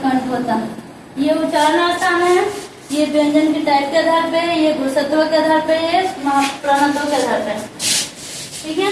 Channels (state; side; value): identical; both; correlation 1.00